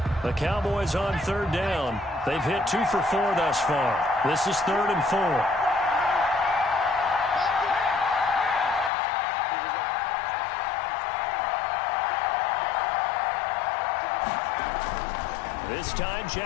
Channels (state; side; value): drops out; right; at 8.9 s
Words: The Cowboys on third down. They've hit 2 for 4 thus far. This is 3rd and 4. This time,